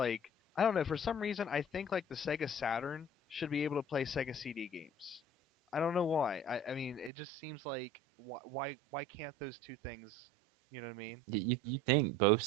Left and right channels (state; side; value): drops out; left; at 7.1 s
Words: I don't know, for some reason I think like the Sega Saturn should be able to play Sega CD games. I don't know why. I mean, it just seems like why can't those two things, you know what I mean? You think both